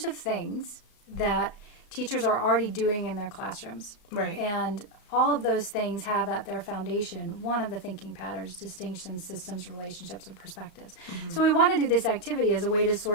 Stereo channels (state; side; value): late; right; 34 ms